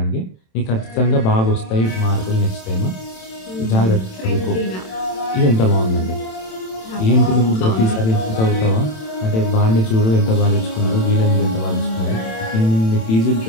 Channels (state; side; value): late; right; 27 ms